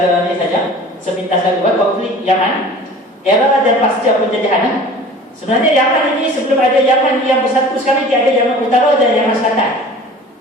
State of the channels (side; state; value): both; normal; correlation 0.43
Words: ni saja. Sepintas lalu, konflik Yaman, era dan pasca penjajahan. Sebenarnya Yaman ini sebelum ada Yaman yang bersatu sekarang, dia ada Yaman Utara dan Yaman Selatan.